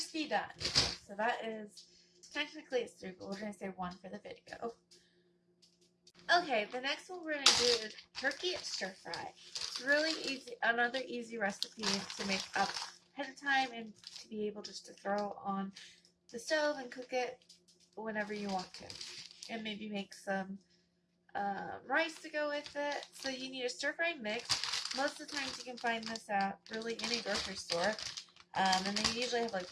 done. So that is, technically it's 3, but we're going to say 1 for the video. Okay, the next one we're going to do is turkey stir fry. It's really easy, another easy recipe to make up ahead of time and to be able just to throw on the stove and cook it whenever you want to. And maybe make some rice to go with it. So you need a stir fry mix. Most of the times you can find this at really any grocery store. And they usually have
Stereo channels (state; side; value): identical; both; correlation 1.00